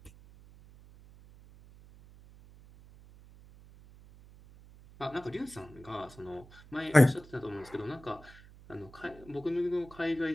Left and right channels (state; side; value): noise; right; hum, 21 dB below the sound